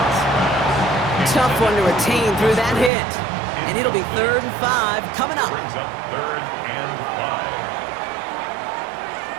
Tough one to retain through that hit. And it'll be 3rd and 5 coming up. brings up 3rd and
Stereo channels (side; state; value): left; drops out; at 2.9 s